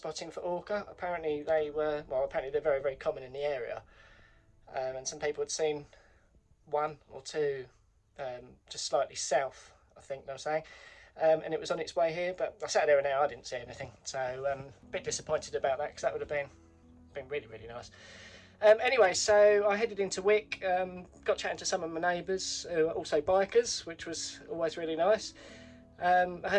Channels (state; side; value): identical; both; correlation 1.00